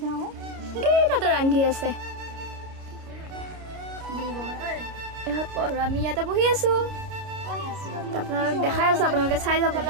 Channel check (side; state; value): left; late; 29 ms